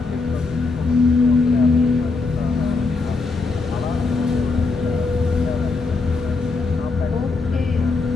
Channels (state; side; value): quieter; right; 4.0 dB